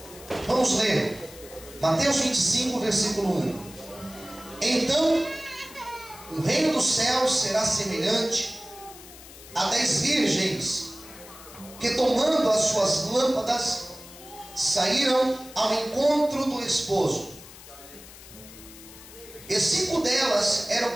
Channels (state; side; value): noise; left; hiss, 18 dB below the sound